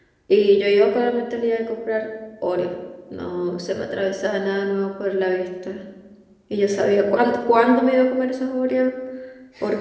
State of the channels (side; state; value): both; identical; correlation 1.00